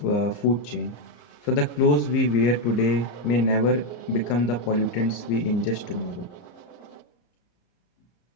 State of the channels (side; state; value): right; late; 34 ms